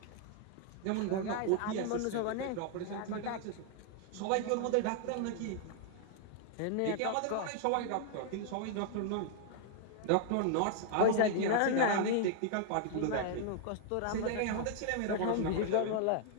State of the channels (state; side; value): different; both; correlation 0.00